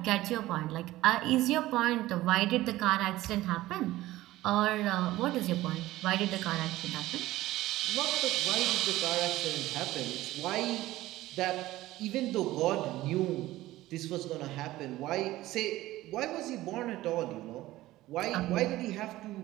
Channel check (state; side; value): quieter; left; 16.6 dB